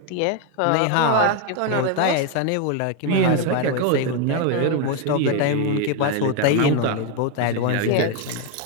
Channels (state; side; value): different; both; correlation 0.01